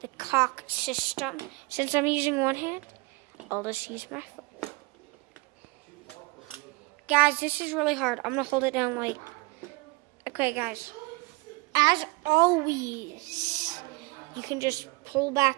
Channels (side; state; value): left; quieter; 25.7 dB